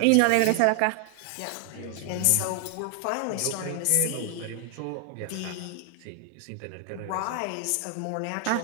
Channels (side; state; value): both; different; correlation 0.00